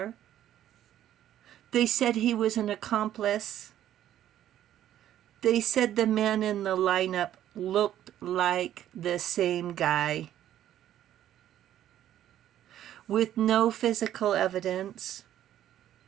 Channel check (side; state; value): left; quieter; 11.7 dB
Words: They said he was an accomplice. They said the man in the lineup looked like the same guy. With no physical evidence,